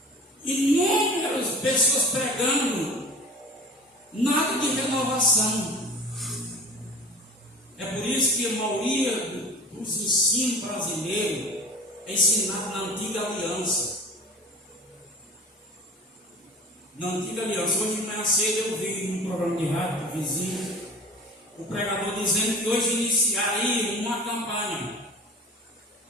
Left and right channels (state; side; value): normal; both; correlation 0.39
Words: inúmeras pessoas pregando, nada de renovação. É por isso que a maioria dos ensinos brasileiros é ensinado na antiga aliança. Na antiga aliança, hoje de manhã cedo eu vi num programa de rádio do vizinho, o pregador dizendo que hoje iniciaria uma campanha